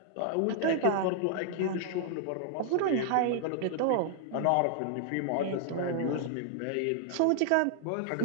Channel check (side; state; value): both; different; correlation 0.00